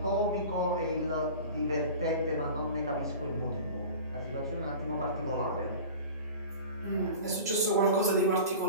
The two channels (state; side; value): inverted; both; correlation -0.37